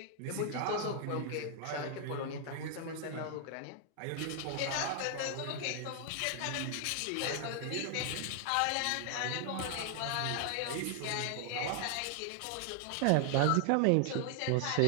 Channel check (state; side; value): different; both; correlation 0.00